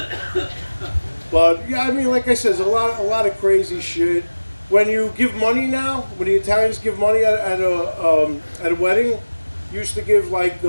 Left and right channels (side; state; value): both; inverted; correlation -1.00